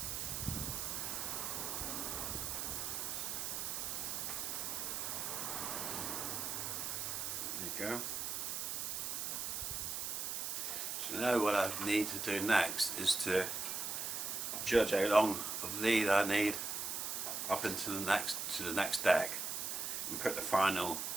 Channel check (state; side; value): noise; right; hiss, 2 dB below the sound